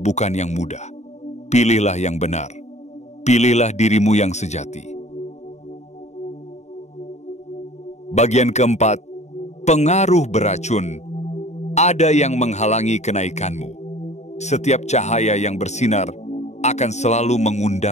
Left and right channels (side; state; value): right; late; 0.33 ms